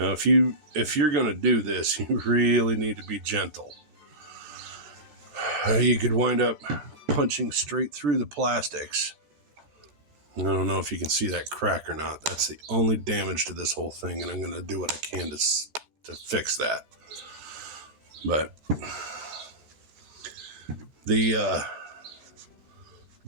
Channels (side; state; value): left; late; 14 ms